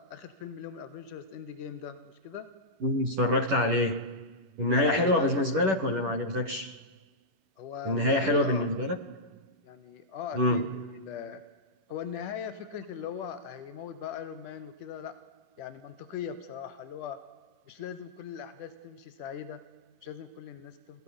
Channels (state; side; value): late; left; 11 ms